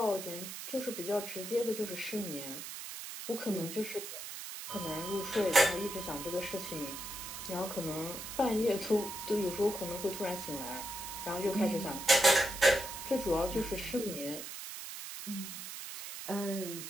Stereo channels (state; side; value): noise; right; hiss, 8 dB below the sound